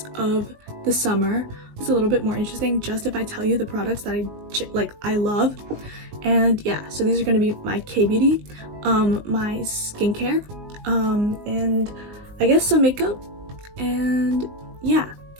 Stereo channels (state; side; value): late; left; 19 ms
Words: of the summer. It's a little bit more interesting just if I tell you the products that I love. And yeah, so these are going to be my KBeauty, my skincare, and I guess some makeup. And yeah,